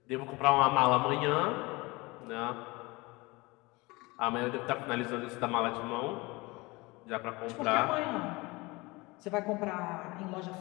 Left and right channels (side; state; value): right; quieter; 23.8 dB